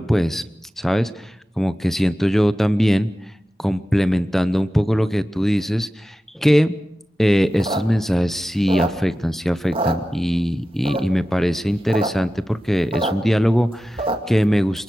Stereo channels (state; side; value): normal; both; correlation 0.94